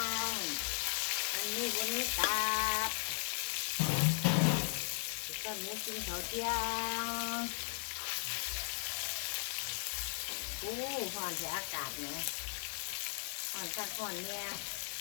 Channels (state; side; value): silent; right; digital silence